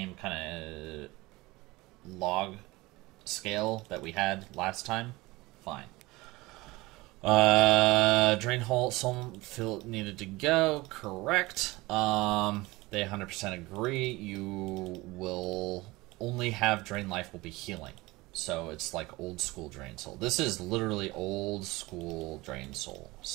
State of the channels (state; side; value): quieter; left; 21.3 dB